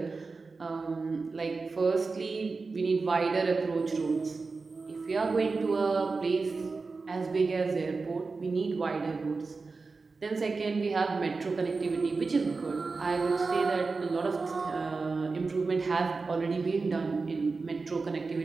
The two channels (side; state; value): left; quieter; 4.1 dB